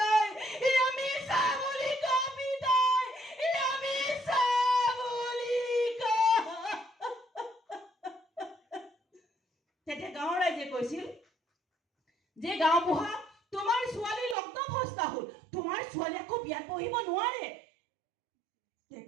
এয়া মিছা বুলি কওঁ পিতাই, এয়া মিছা বুলি কওঁ। তেতিয়া গাঁৱৰ ৰাইজে কৈছিল যে গাঁওবুঢ়া, তোমাৰ ছোৱালী লগ্নভ্ৰষ্টা হ'ল, তোমাৰ ছোৱালী আকৌ বিয়াত বহিব নোৱাৰে।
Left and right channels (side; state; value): left; drops out; at 14.4 s